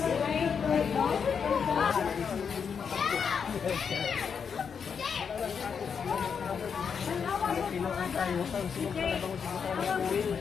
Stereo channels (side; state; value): right; quieter; 6.6 dB